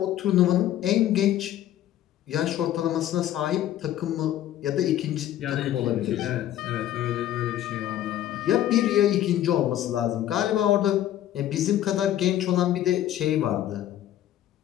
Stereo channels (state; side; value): quieter; right; 12.4 dB